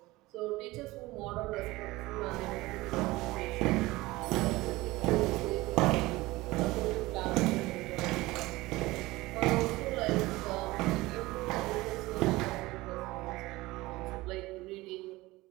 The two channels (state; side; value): quieter; left; 19.9 dB